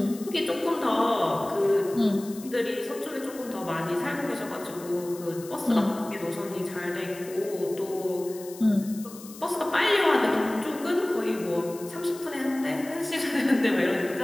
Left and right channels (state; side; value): noise; left; hiss, 17 dB below the sound